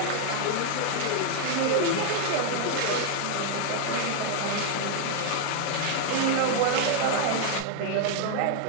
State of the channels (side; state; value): both; different; correlation 0.00